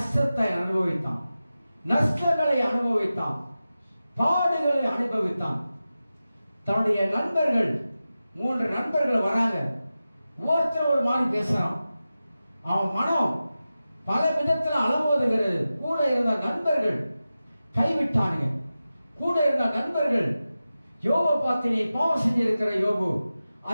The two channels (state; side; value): inverted; both; correlation -0.94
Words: அனுபவித்தான், நஷ்டங்களை அனுபவித்தான், பாடுகளை அனுபவித்தான். தன்னுடைய நண்பர்கள், 3 நண்பர்கள் வராங்க, ஒருத்தர் ஒரு மாதிரி பேசுறான். அவன் மனம் பல விதத்தில் அலமோதுகிறது. கூட இருந்த நண்பர்கள் கைவிட்டானுங்க. கூட இருந்த நண்பர்கள் யோபு பார்த்து நீ பாவம் செஞ்சிருக்கிற யோபு,